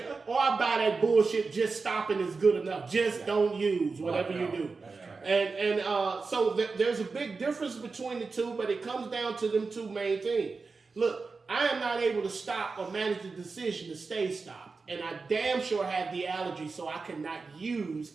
or I buy that bullshit, just stopping is good enough. Just don't use whatever you do. And so there's a big difference between the two, but it comes down to them two main things. Look, I am not able to stop or manage the decision to stay stopped. And I damn sure have the allergy, so I cannot use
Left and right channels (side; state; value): left; quieter; 4.3 dB